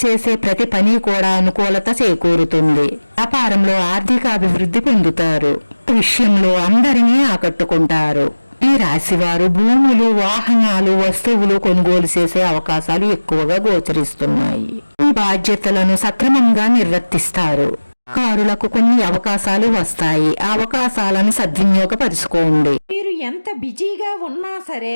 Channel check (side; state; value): both; inverted; correlation -1.00